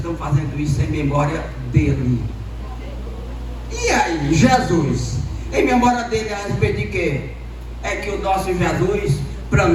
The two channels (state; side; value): identical; both; correlation 1.00